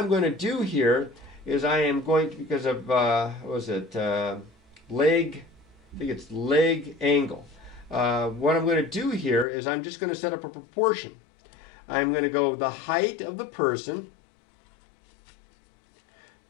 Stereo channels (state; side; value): drops out; right; at 9.5 s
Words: going to do here is I am going to, because of, what was it, leg, I think it's leg angle. What I'm going to do here is I'm just going to set up a proportion. I'm going to go the height of the person